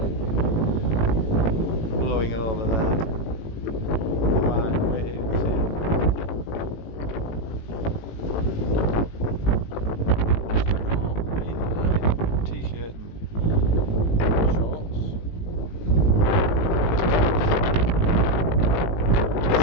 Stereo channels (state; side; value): late; right; 18 ms